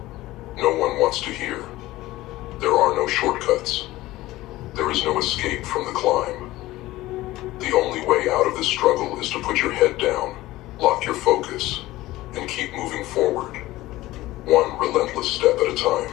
no one wants to hear. There are no shortcuts. There is no escape from the climb. The only way out of this struggle is to put your head down, lock your focus, and keep moving forward, one relentless step at a time.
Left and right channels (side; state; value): right; quieter; 17.4 dB